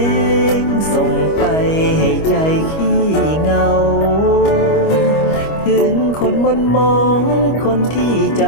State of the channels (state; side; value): late; right; 25 ms